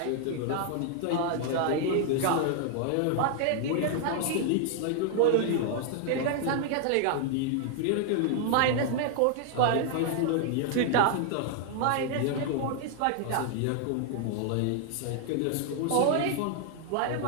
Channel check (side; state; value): both; different; correlation 0.00